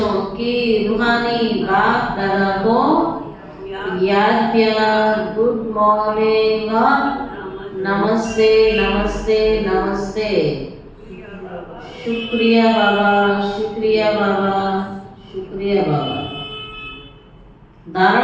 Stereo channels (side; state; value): both; identical; correlation 1.00